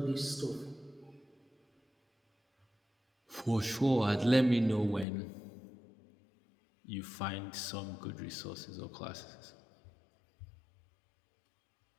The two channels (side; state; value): right; drops out; at 5.1 s